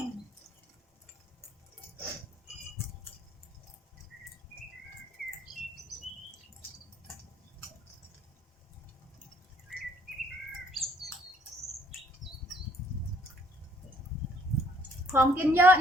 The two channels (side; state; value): both; normal; correlation 0.63